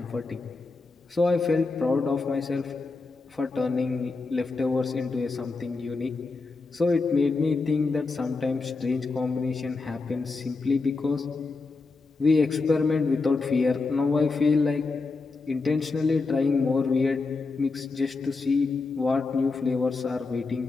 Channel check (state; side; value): quieter; right; 3.9 dB